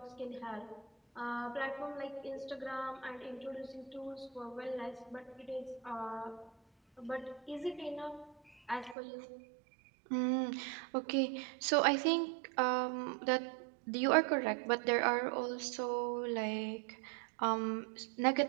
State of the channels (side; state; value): left; drops out; at 9.0 s